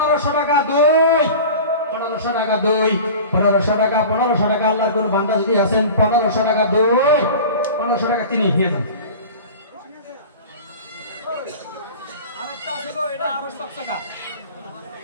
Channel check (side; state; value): both; inverted; correlation -0.36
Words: টাকা দুই 1500 টাকা দুই 1500 টাকা 1500 টাকা আল্লাহর কোন বান্দা যদি আছেন 1500 টাকা দুই 1500 টাকা তিনি নিয়ে যান আরেকটা আছে গো এটা আরো চকচকা